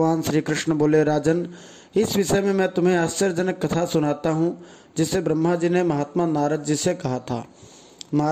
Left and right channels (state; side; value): identical; both; correlation 1.00